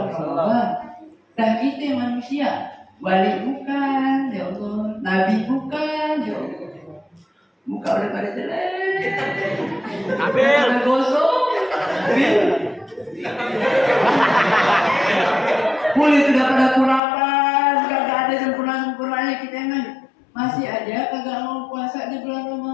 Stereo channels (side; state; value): right; drops out; at 17.0 s